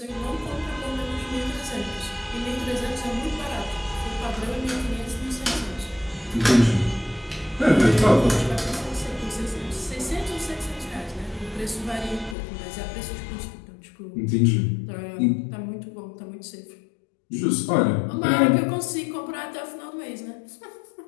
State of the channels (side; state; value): right; drops out; at 12.4 s